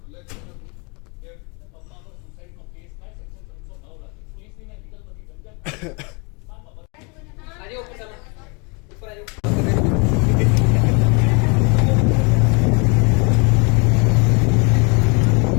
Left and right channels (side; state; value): right; quieter; 31.9 dB